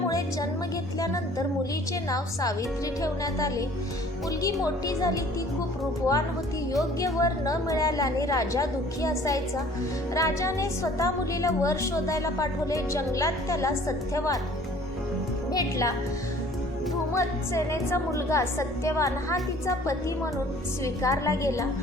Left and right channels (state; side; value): normal; both; correlation 0.52